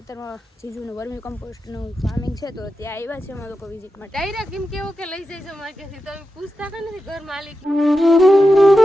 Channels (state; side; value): normal; both; correlation 0.90